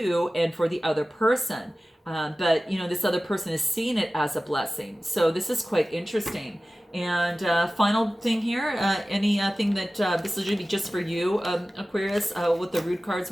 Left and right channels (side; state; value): both; normal; correlation 0.96